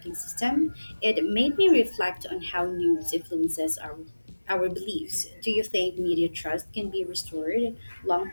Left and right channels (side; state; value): both; inverted; correlation -1.00